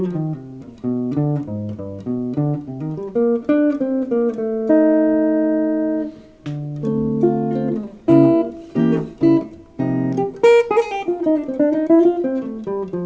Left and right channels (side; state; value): both; identical; correlation 1.00